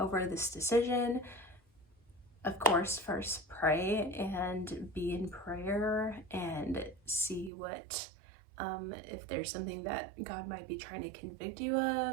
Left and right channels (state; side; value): drops out; left; at 7.5 s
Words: this decision. Of course, first pray and be in prayer and see what, if there's something that God might be trying to convict you